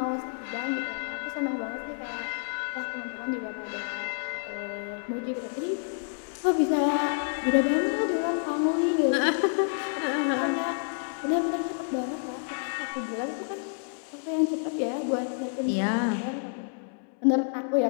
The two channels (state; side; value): silent; right; 59 dB below the other